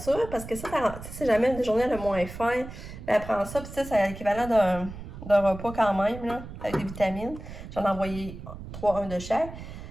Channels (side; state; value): right; noise; rumble, 12 dB below the sound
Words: parce que ça, c'est jamais une journée le moins faim. Ben, elle prend ça, puis ça, c'est l'équivalent d'un repas quand même, là, avec des vitamines. J'en ai envoyé 3, 1 de chaque.